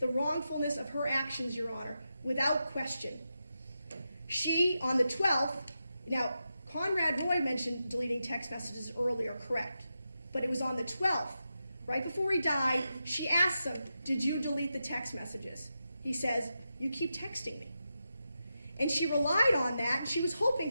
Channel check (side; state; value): both; inverted; correlation -0.89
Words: wrongfulness of her actions, Your Honor, without question. She, on the 12th, now, Conrad Roy mentioned deleting text messages earlier, correct. But it was on the 12th, right before he died, she asked him, did you delete the text messages? He says, you keep texting me. And she relied on that, and she was